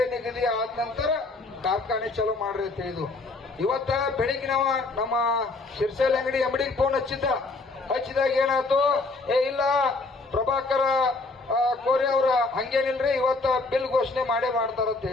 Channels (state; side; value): quieter; right; 3.4 dB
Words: ನಿಗದಿ ಆದ ನಂತರ ಕಾರ್ಖಾನೆ ಚಲೋ ಮಾಡ್ರಿ ಅಂತ ಹೇಳಿದ್ವು. ಇವತ್ತ ಬೆಳಿಗ್ಗೆ ನಾವು ನಮ್ಮ ಶಿರ್ಸೇಲ್ ಅಂಗಡಿ MDಗೆ ಫೋನ್ ಹಚ್ಚಿದಾಗ ಏನಾಯ್ತು, ಇಲ್ಲ ಪ್ರಭಾಕರ ಕೋರೆ ಅವ್ರ ಹಂಗೇನಿಲ್ರಿ, ಇವತ್ತ ಬಿಲ್ ಘೋಷಣೆ ಮಾಡ್ತಾರ ಅಂತ